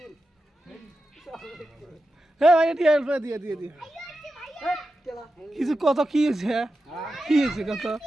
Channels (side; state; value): both; normal; correlation 0.91